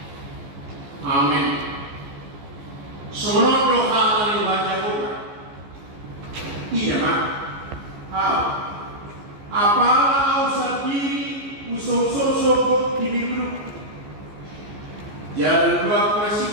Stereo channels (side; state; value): left; late; 14 ms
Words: Amin. Semua doa yang dibaca Tuhan. Iya mak. Apalah usah diri usah-usah diri jalan dua